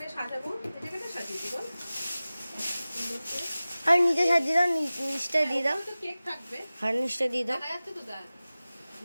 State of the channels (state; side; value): inverted; both; correlation -0.97